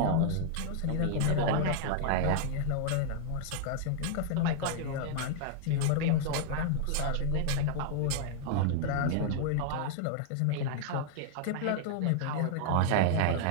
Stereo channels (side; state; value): both; different; correlation -0.01